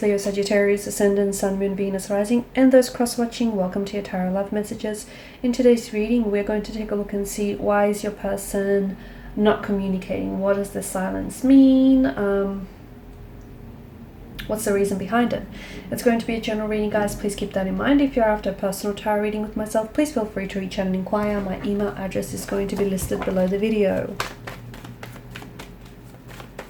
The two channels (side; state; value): both; identical; correlation 1.00